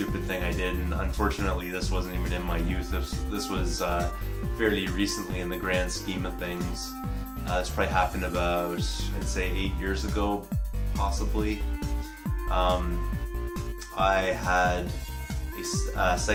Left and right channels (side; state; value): both; identical; correlation 1.00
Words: thing I did, and unfortunately this wasn't even in my youth. This was fairly recently in the grand scheme of things. This probably happened about, I'd say 8 years ago, possibly. I had a